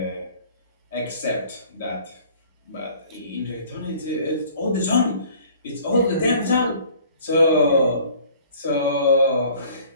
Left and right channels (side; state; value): both; inverted; correlation -0.52